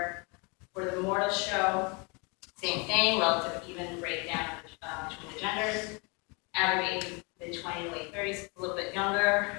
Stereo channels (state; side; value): quieter; right; 31.0 dB